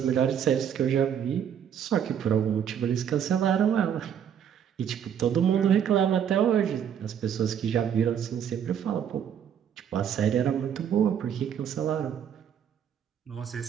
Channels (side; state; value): left; quieter; 8.7 dB